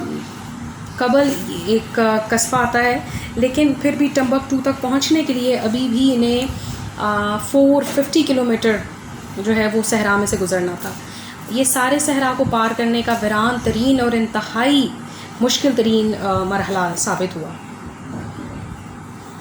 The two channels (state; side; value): identical; both; correlation 1.00